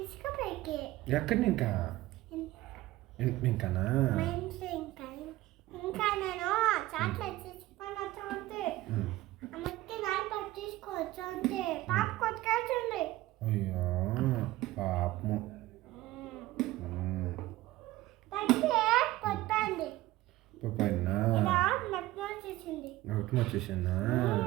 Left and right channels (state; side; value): quieter; left; 17.2 dB